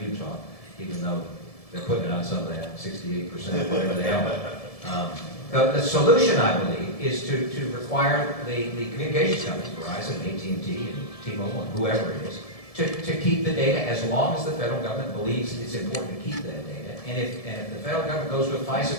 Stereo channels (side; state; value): right; late; 1.7 ms